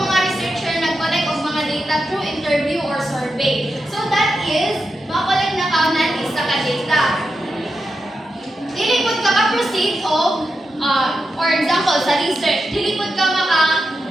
mga researcher nag-collect of mga data through interview or survey. So, that is, makakolect na kaunan isa ka data. Dili pud ka ka-proceed of, for example, sa research, dili pud ka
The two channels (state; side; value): normal; both; correlation 0.88